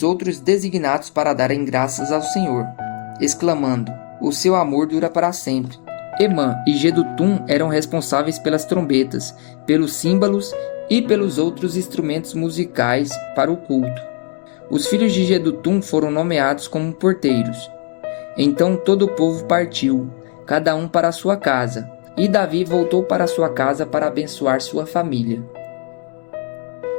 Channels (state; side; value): quieter; right; 39.0 dB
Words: outros designados para darem graças ao Senhor, exclamando: o seu amor dura para sempre. Emã e Jedutum eram responsáveis pelas trombetas, pelos símbolos e pelos outros instrumentos musicais para o culto. Os filhos de Jedutum foram nomeados como porteiros. Então todo o povo partiu, cada um para a sua casa, e Davi voltou para sua casa para abençoar sua família.